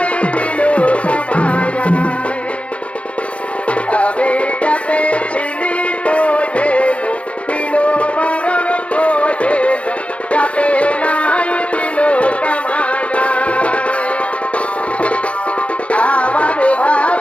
দিল কামায় আমি যাতে ছিলি বোঝে দিল বারণ বোঝে যাতে নাই দিল কামায় আমার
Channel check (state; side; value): late; right; 0.062 ms